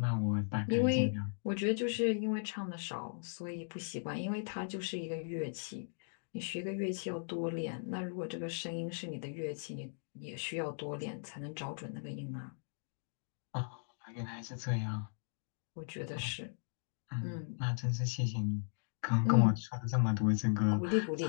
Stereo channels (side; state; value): right; silent; digital silence